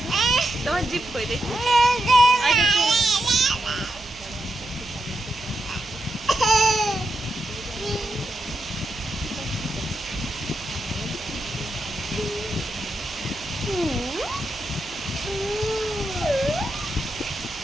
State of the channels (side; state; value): right; noise; hum, 20 dB below the sound